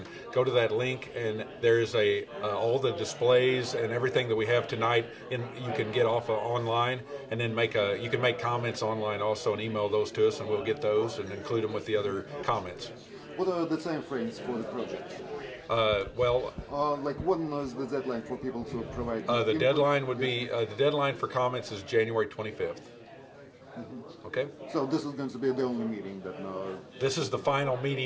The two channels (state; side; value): identical; both; correlation 1.00